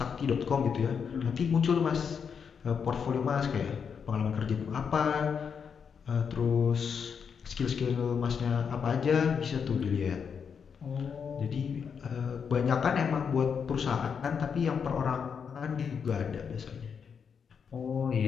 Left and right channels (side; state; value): right; quieter; 6.6 dB